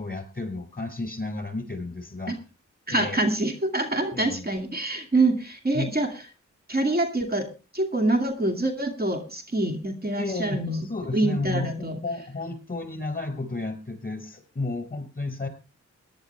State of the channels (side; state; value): both; normal; correlation 0.54